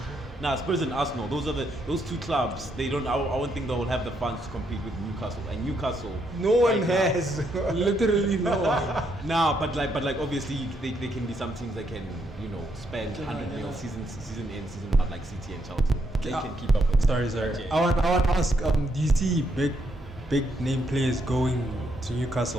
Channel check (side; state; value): both; normal; correlation 0.76